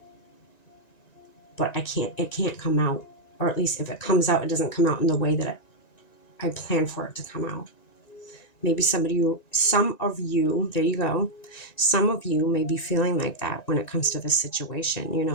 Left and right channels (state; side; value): late; right; 1.9 ms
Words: but it can't come out. Or at least if it comes out, it doesn't come out in the way that I planned for it to come out. Maybe some of you, there you go. Some of you may be feeling like that when it comes to this situation.